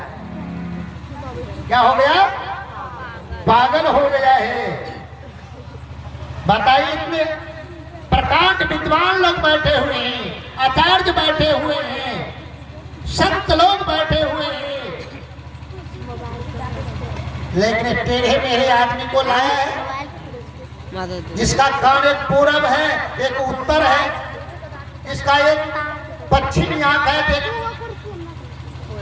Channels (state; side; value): identical; both; correlation 1.00